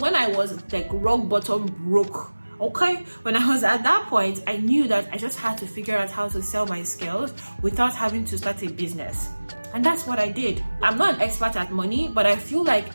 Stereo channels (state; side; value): inverted; both; correlation -1.00